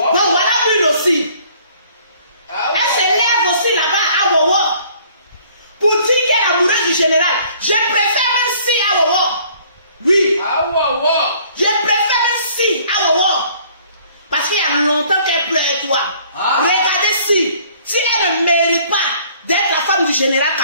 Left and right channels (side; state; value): both; inverted; correlation -0.57